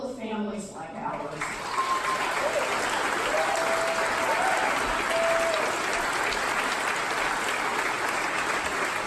families like ours.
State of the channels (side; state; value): both; identical; correlation 1.00